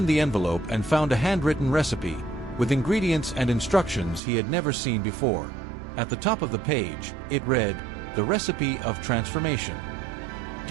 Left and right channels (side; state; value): left; drops out; at 4.2 s